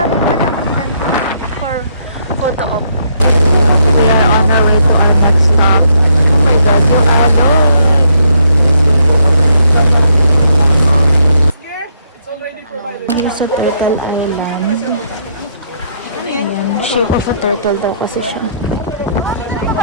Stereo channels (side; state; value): both; inverted; correlation -0.72